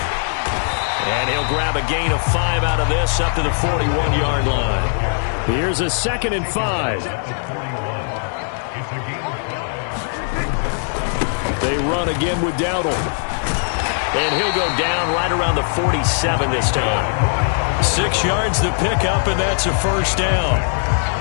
And he'll grab a gain of 5 out of this up to the 41-yard line. Here's a 2nd and 5. They run again with Dowdle. And he'll go down right around the 47 this time. 6 yards to pick up, and that's a first down.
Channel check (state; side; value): silent; right; digital silence